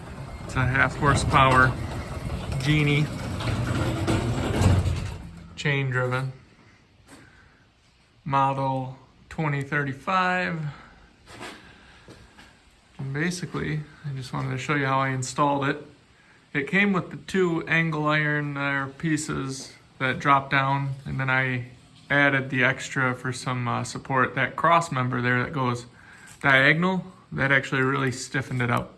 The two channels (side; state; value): both; identical; correlation 1.00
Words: It's a 1/2 horsepower Genie, chain driven, model 2035. And basically, I just wanted to show you how I installed it. It came with the 2 angle iron pieces that drop down, and then I added the extra for some support. That cross member there that goes diagonal, that actually really stiffened it